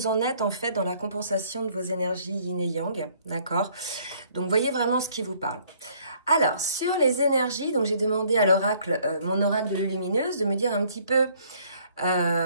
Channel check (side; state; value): both; inverted; correlation -0.61